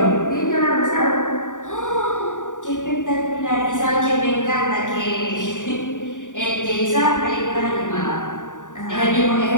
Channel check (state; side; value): late; right; 0.87 ms